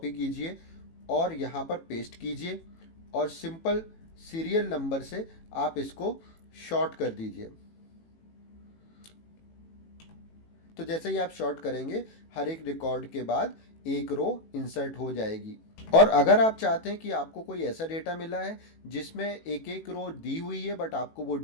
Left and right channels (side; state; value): right; late; 18 ms